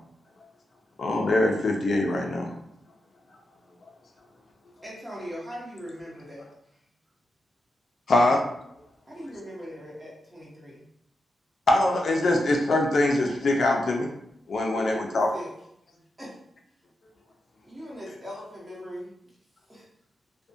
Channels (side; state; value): both; normal; correlation 0.86